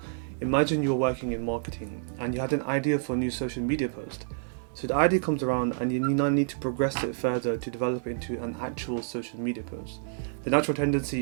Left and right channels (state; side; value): silent; left; digital silence